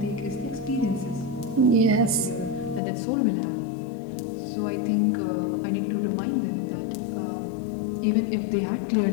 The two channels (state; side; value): drops out; right; at 2.8 s